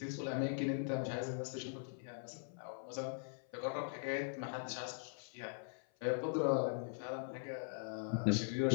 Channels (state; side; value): silent; right; 50 dB below the other